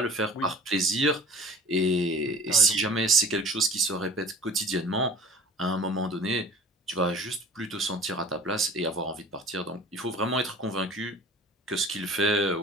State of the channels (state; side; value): normal; both; correlation 0.43